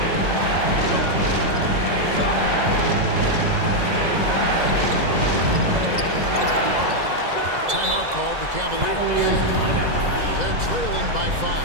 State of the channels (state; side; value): late; left; 2.0 ms